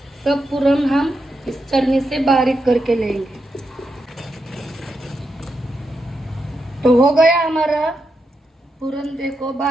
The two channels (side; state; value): both; normal; correlation 0.84